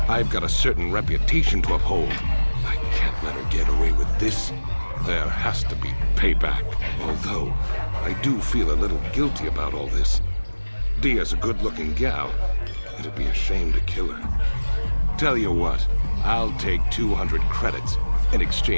I've got a certain reputation to uphold. I can't let her get away with this. There has to be payback. Although, I do feel a little guilty about all this. Dia's a good-looking gal. It'd be a shame to kill her. Tell you what, I'll take 200 credits in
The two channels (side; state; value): both; inverted; correlation -1.00